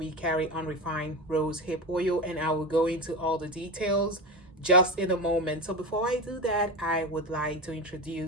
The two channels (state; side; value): normal; both; correlation 0.21